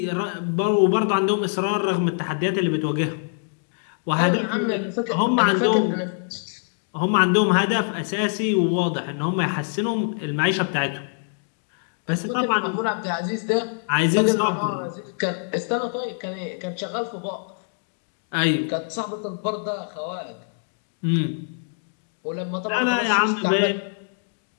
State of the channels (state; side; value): silent; right; digital silence